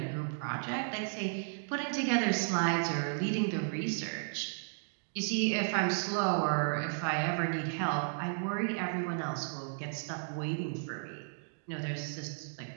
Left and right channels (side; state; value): left; silent; digital silence